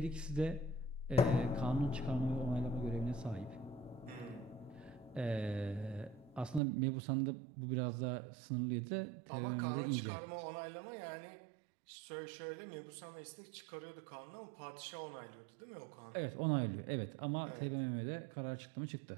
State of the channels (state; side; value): drops out; left; at 6.6 s